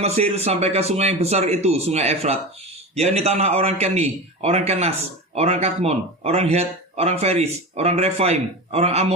sampai ke sungai yang besar itu, sungai Efrat, yakni tanah orang Keni, orang Kenas, orang Kadmon, orang Het, orang Feris, orang Refaim, orang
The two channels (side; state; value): both; normal; correlation 0.26